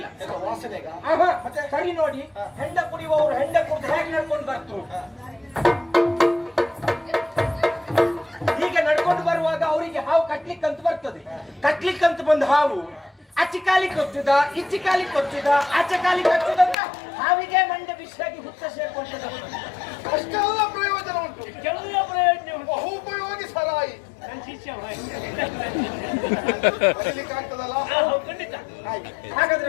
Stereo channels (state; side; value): drops out; right; at 16.8 s